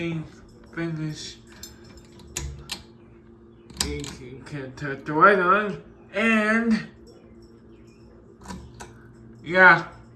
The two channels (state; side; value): identical; both; correlation 1.00